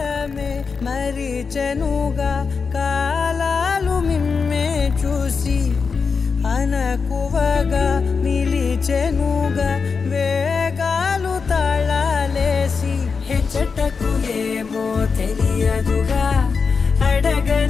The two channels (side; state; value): right; quieter; 5.2 dB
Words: మరిచెనుగా కాలాలు మిమ్మే చూసి అనకువగా నిలిచెనుగా వేగాలు తాళాలేసి హెచ్చటకు ఏమో తెలియదుగా